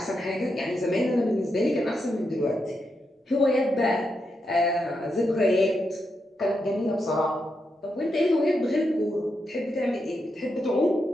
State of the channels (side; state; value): both; normal; correlation 0.84